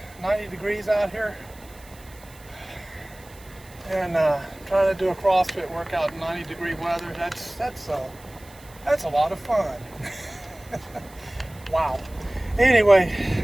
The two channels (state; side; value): noise; right; hiss, 23 dB below the sound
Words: 90 degrees out here? And trying to do a CrossFit workout in 90-degree weather, that's a lot of fun. Wow. Anyway,